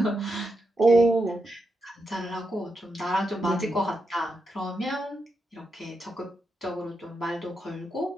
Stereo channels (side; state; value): both; normal; correlation 0.85